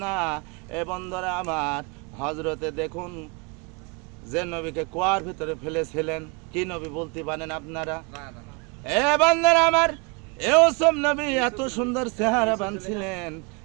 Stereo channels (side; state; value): left; quieter; 30.8 dB